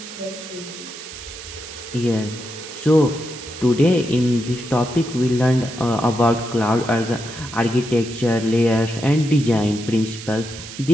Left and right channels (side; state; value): right; noise; hiss, 13 dB below the sound